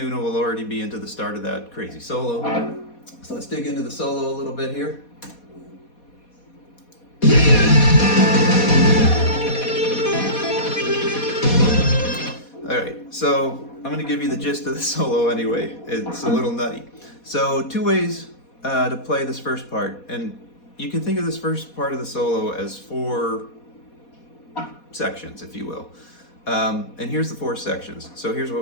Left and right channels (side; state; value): right; late; 4.2 ms